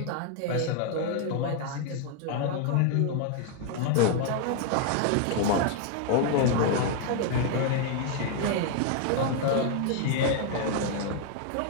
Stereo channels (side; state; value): both; different; correlation 0.00